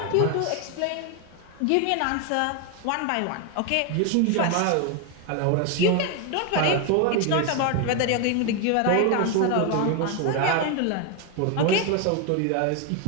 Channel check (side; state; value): both; different; correlation 0.01